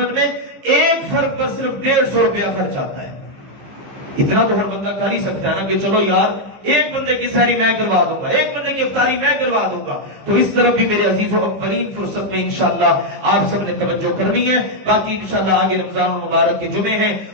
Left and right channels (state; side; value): late; left; 15 ms